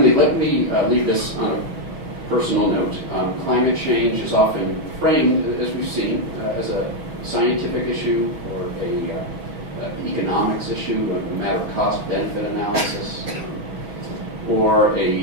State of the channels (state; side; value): late; left; 6.2 ms